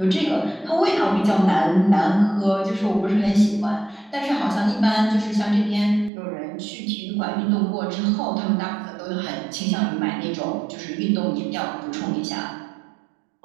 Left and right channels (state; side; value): drops out; left; at 6.1 s